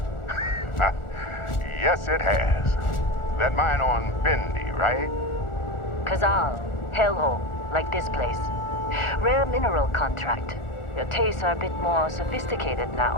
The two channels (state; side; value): late; right; 1.4 ms